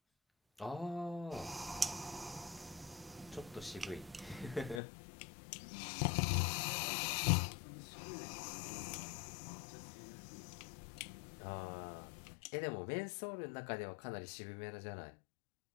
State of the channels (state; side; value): drops out; right; at 4.8 s